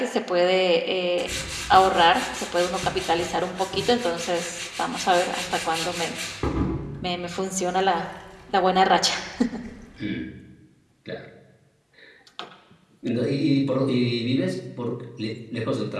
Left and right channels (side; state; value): both; identical; correlation 1.00